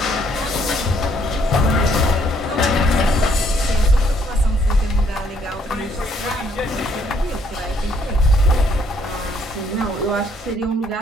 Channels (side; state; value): both; normal; correlation 0.67